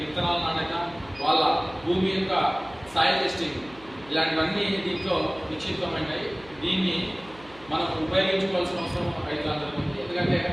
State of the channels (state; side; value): noise; right; hum, 23 dB below the sound